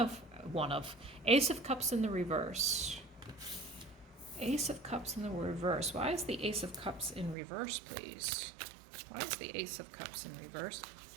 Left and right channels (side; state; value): left; drops out; at 7.4 s